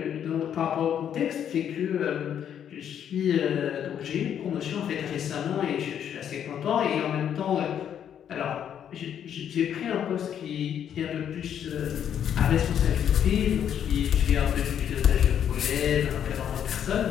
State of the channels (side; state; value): right; quieter; 9.2 dB